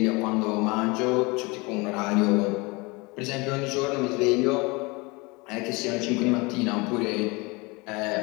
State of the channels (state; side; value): quieter; right; 26.1 dB